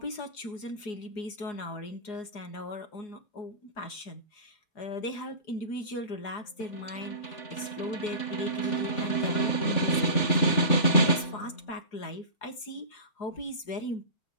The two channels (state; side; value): late; right; 4.8 ms